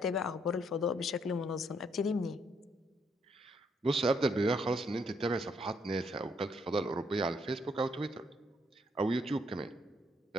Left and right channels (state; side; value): normal; both; correlation 0.72